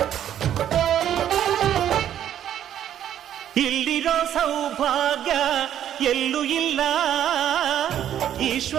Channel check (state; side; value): quieter; left; 10.5 dB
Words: ಇಲ್ಲಿರೋ ಸೌಭಾಗ್ಯ ಎಲ್ಲೂ ಇಲ್ಲ,